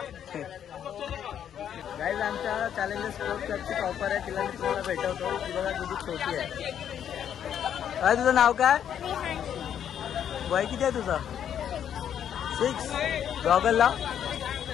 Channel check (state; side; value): quieter; right; 9.3 dB